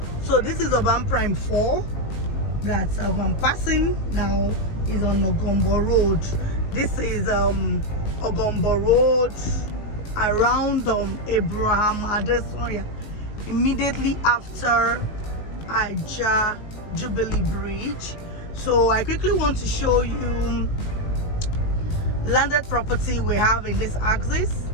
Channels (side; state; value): right; late; 19 ms